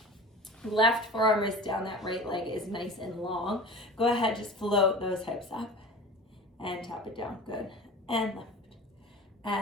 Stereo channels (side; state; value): both; normal; correlation 0.36